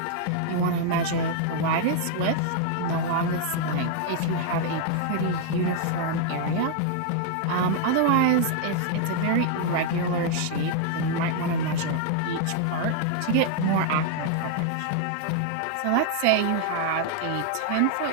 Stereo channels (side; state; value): both; different; correlation 0.00